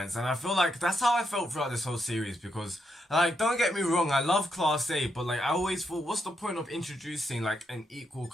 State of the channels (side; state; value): both; normal; correlation 0.81